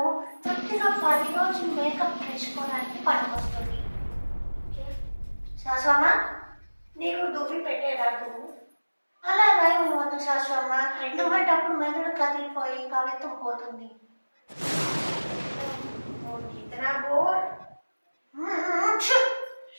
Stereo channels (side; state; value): both; inverted; correlation -1.00